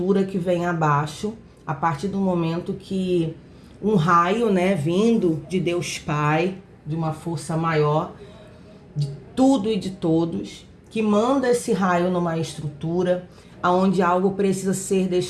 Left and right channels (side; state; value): both; identical; correlation 1.00